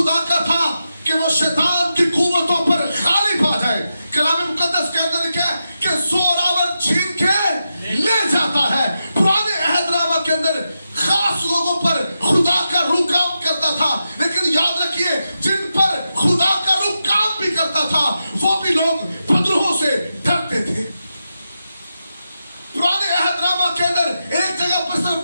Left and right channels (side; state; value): both; inverted; correlation -0.89